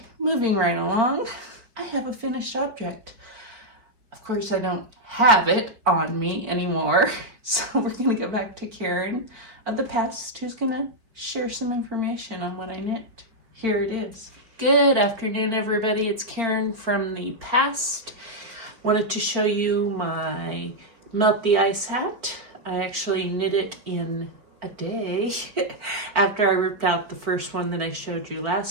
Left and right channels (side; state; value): left; late; 4.4 ms